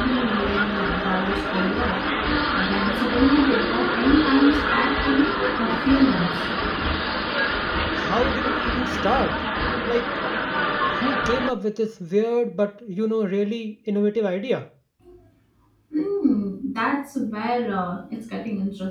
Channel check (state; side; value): identical; both; correlation 1.00